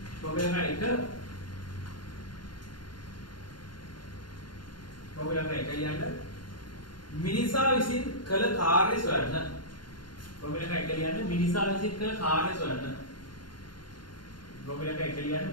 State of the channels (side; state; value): right; late; 0.71 ms